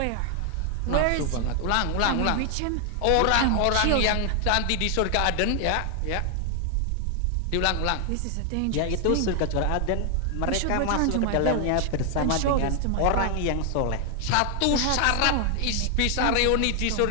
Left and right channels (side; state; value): both; different; correlation 0.00